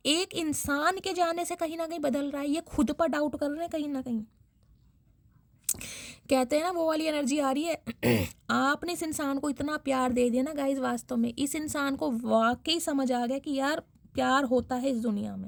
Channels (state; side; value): identical; both; correlation 1.00